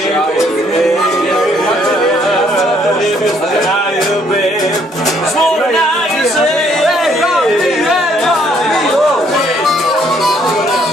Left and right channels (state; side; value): normal; both; correlation 0.66